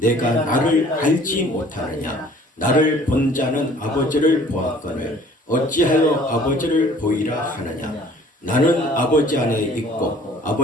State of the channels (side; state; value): both; normal; correlation 0.53